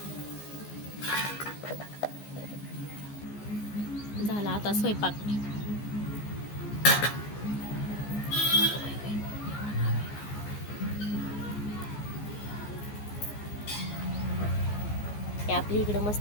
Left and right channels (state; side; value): late; right; 14 ms